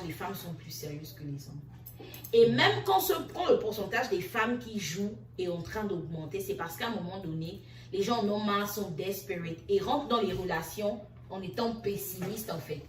les femmes sont plus sérieuses que les hommes. Et même quand le pourcentage des femmes qui jouent est en train d'augmenter, c'est parce qu'à un moment donné, les gens en ont marre, sont desperate et rentrent dans les relations en étant pessimistes en fait.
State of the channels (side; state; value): both; identical; correlation 1.00